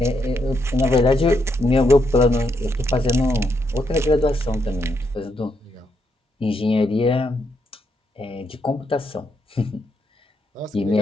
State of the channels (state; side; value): normal; both; correlation 0.78